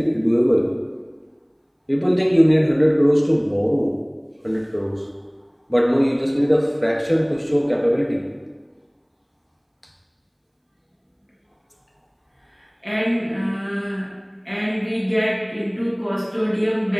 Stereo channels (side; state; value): both; identical; correlation 1.00